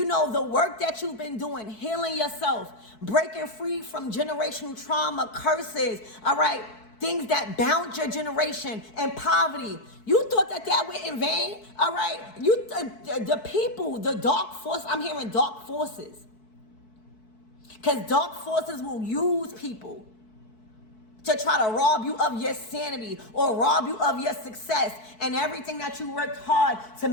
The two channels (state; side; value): late; right; 4.6 ms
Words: work that you've been doing, healing yourself, breaking free from generational trauma, curses, all right? Things that bound your generation and poverty. You thought that went in vain, all right? The people, the dark force, I'm hearing dark forces. Because dark forces will use people to try to rob you of your sanity or rob you of your success and everything that you worked hard to